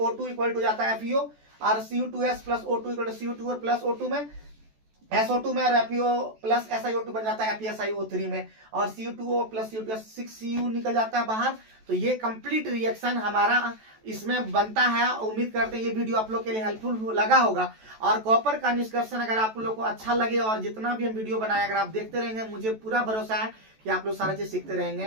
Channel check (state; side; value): late; left; 14 ms